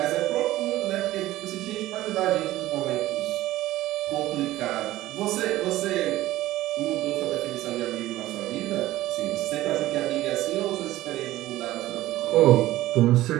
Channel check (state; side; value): quieter; left; 15.9 dB